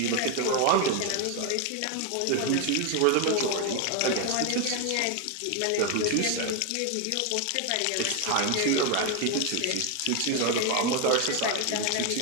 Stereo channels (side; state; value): both; different; correlation 0.01